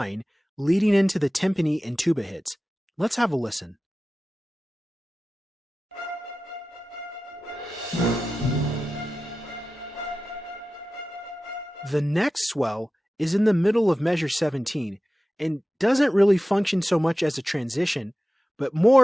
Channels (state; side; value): normal; both; correlation 0.95